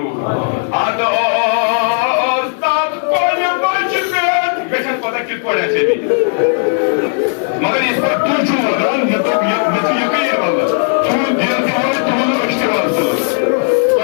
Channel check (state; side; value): silent; right; digital silence